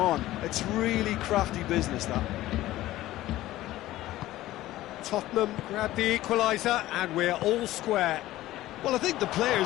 It's really crafty business, that. Tottenham grabbed the equaliser and we're all square. Well, I think the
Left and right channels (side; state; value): right; quieter; 15.7 dB